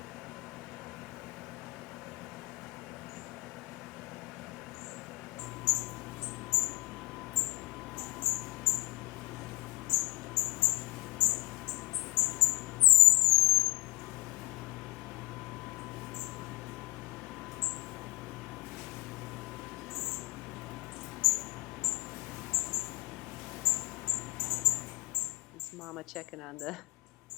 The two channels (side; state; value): right; quieter; 21.5 dB